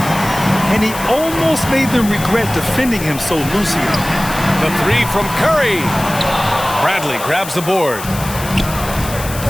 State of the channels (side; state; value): left; noise; hiss, 11 dB below the sound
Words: And he almost made them regret defending him so loosely. The 3 from Curry. Bradley grabs the board.